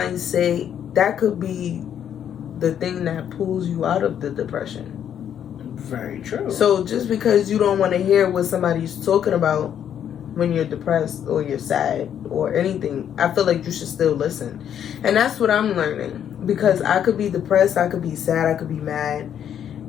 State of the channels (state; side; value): quieter; right; 9.4 dB